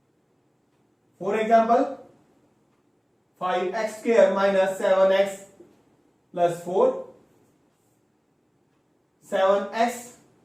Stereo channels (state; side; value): identical; both; correlation 1.00